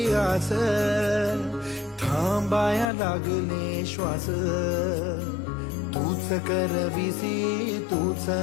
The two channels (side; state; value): right; drops out; at 2.9 s